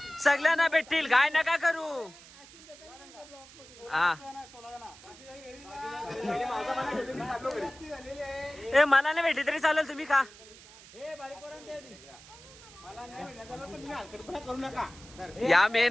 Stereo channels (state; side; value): noise; right; hiss, 20 dB below the sound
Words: सगळ्यांना भेटतील काय नका करू. हा ए मला नाही भेटली तरी चालेल तुम्ही खा. करू नका. या